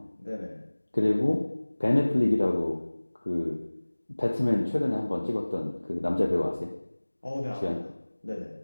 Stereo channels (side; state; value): both; inverted; correlation -1.00